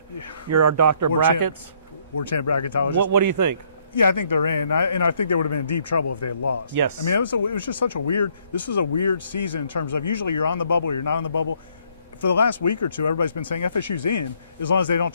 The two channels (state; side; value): inverted; both; correlation -0.68